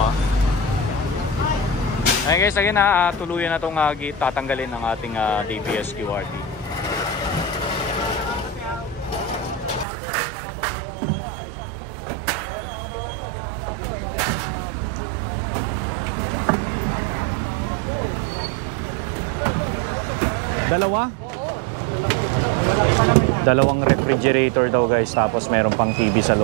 Ayun guys, again tuluyan na itong tatanggalin ng ating DPS QRT. Dalawang refrigerator daw guys, tapos meron pang TV sa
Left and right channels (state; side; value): drops out; left; at 9.9 s